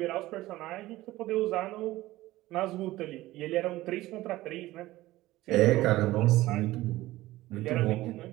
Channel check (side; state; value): left; quieter; 17.1 dB